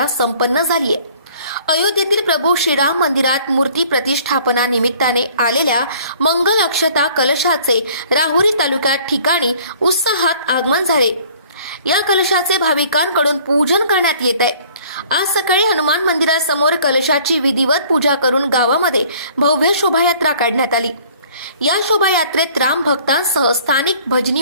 संपन्न झाली आहे। अयोध्येतील प्रभू श्रीराम मंदिरात मूर्ती प्रतिष्ठापना निमित्ताने आलेल्या मंगल अक्षता कलशाचे राहुरी तालुक्यात ठिकाणी उत्साहात आगमन झाले। या कलशाचे भाविकांकडून पूजन करण्यात येत आहे। आज सकाळी हनुमान मंदिरासमोर कलशाची विधिवत पूजा करून गावामध्ये भव्य शोभायात्रा काढण्यात आली। या शोभायात्रेत राम भक्तांसह स्थानिक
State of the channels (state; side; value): inverted; both; correlation -0.54